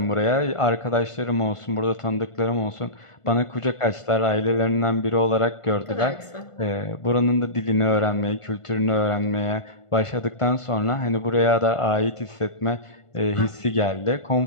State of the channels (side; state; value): right; late; 1.5 ms